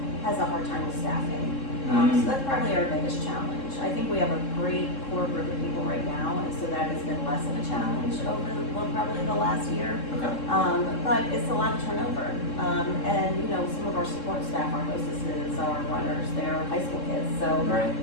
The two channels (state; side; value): late; right; 3.7 ms